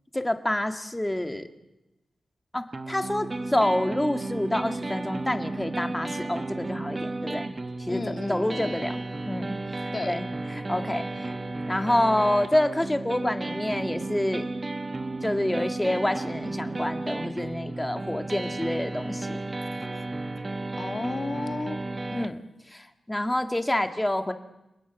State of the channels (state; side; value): normal; both; correlation 0.98